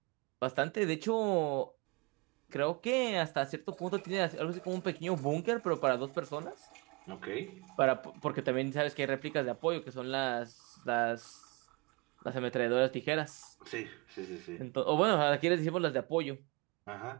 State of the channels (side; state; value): left; quieter; 29.0 dB